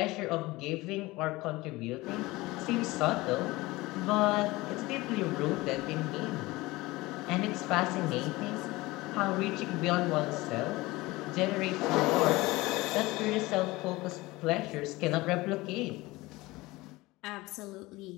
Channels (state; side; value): quieter; right; 20.6 dB